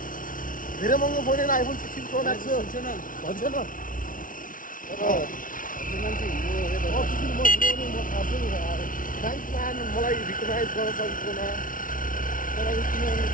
धेरै महँगो फोन होइन आइफोन 16 प्रो म्याक्स हो हुन्छ न भन्छ न थ्याङ्क्स म्यान मलाई रिकगनाइज गर्न सकेकोमा। तर अब किनभने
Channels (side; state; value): right; late; 0.39 ms